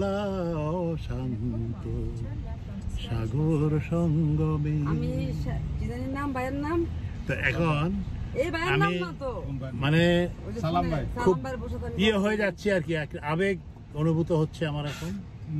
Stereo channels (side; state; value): both; identical; correlation 1.00